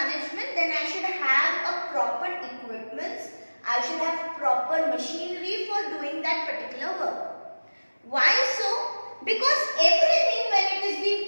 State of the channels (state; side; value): inverted; both; correlation -1.00